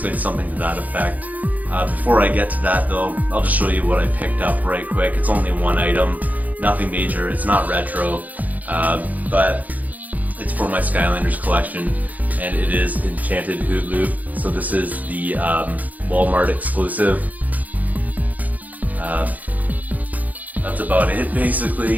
it's something to that effect. Before I get to that though, I'll just show you what I picked up right quick. It's only one item, nothing major, it's not retro. But it's for my Skylanders collection, and it is Enchanted Hoot Loop. So this is the Walmart exclusive. That's about it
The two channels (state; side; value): late; left; 0.078 ms